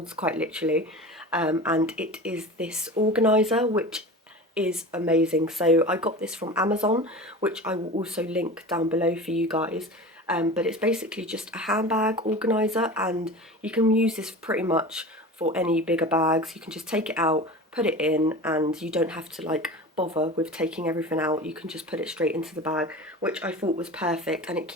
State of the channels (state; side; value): normal; both; correlation 0.33